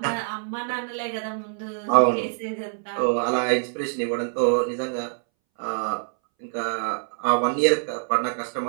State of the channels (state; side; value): silent; left; 62 dB below the other